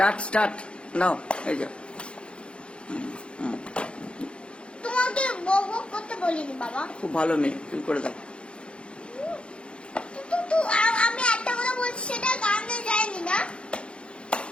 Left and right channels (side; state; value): right; late; 0.057 ms